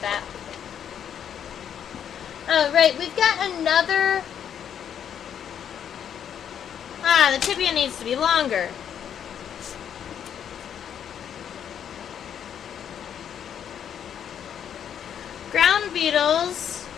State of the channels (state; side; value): quieter; right; 8.8 dB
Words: that. Right, we've got another... the tibia needs to be longer. Ground beetles